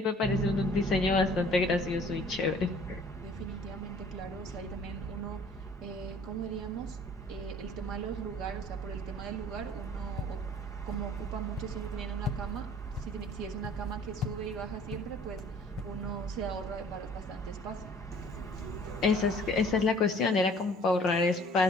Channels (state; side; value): normal; both; correlation 0.53